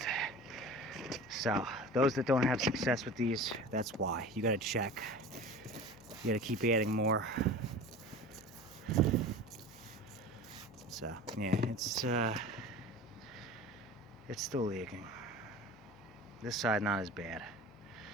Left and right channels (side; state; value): left; noise; hum, 22 dB below the sound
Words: So those that don't have success with these, that's why. You gotta check. You gotta keep adding more. So yeah, it's still leaking. This side not as bad.